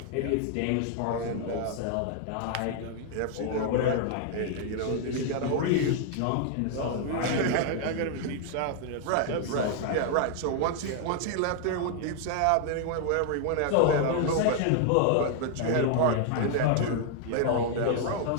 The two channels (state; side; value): different; both; correlation 0.00